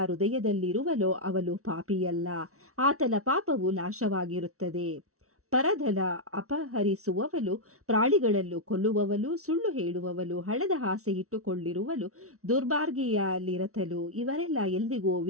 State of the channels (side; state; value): left; late; 0.64 ms